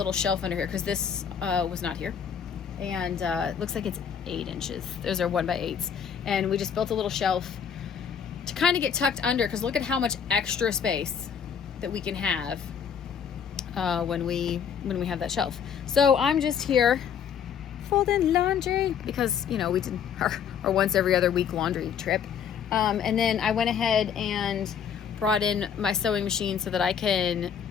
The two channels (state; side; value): quieter; right; 7.6 dB